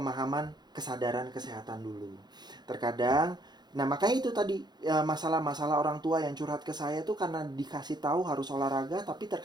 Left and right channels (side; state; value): left; late; 0.21 ms